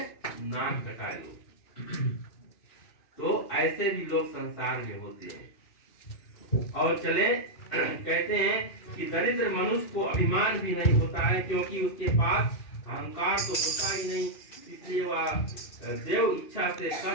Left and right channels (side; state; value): right; late; 2.6 ms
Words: नाक कटाए लो। तो ऐसे भी लोग संसार में होते हैं। और चले कहते हैं कि दरिद्र मनुष्य को अभिमान भी नहीं होता है, क्योंकि उसके पास अहंकार तो होता ही नहीं, इसलिए वह देव इच्छा से